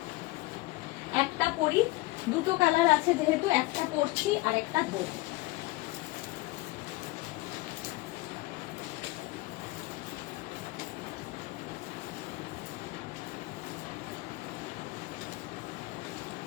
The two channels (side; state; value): right; quieter; 20.7 dB